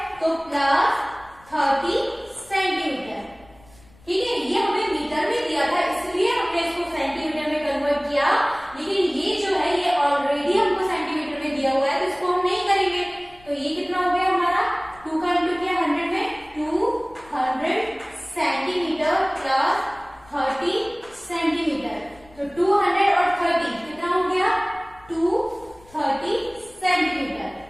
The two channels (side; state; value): left; noise; rumble, 27 dB below the sound